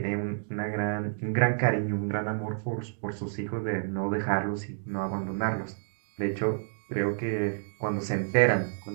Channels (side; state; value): left; silent; digital silence